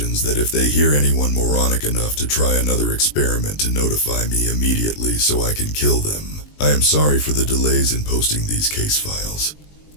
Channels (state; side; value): late; right; 20 ms